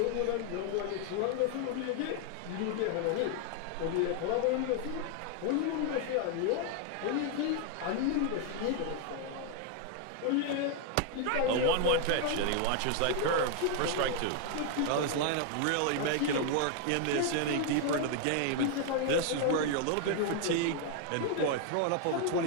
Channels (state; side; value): different; both; correlation 0.00